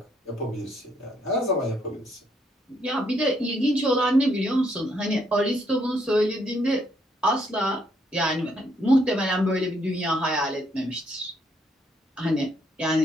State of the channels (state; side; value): normal; both; correlation 0.72